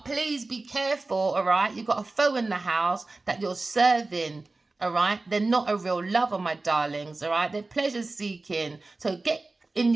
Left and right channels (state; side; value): quieter; left; 3.3 dB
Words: please be careful, all right? You've got a foe in the house that you're serving. All right, they're not a real lover, my darlings. All right, they're pleasure seeking. So get in